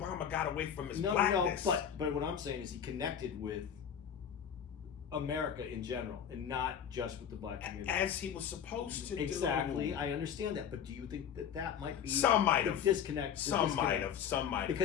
got away from his blackness. No. But what I'm saying is he connected with America in general, and not just with the black community. As he was supposed to do. Exactly. I understand that. But do you think that might be some might have disconnect? Some might have.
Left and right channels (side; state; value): right; quieter; 8.4 dB